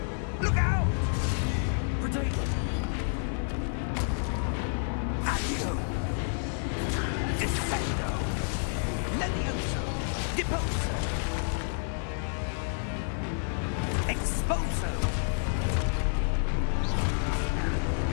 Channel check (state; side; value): silent; right; 58 dB below the other